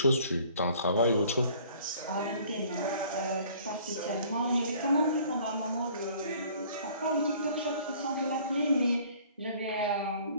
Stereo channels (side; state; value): both; inverted; correlation -0.54